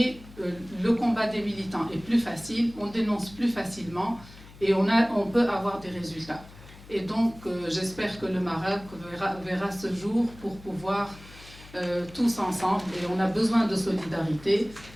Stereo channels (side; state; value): left; noise; hum, 20 dB below the sound